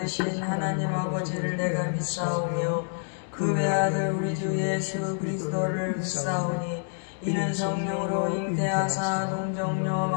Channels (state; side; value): silent; right; 60 dB below the other